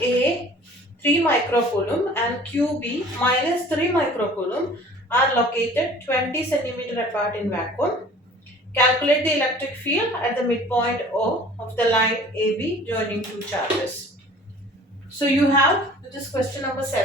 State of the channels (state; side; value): normal; both; correlation 0.48